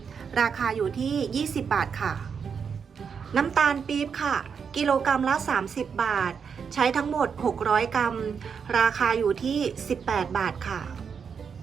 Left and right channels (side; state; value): left; quieter; 6.5 dB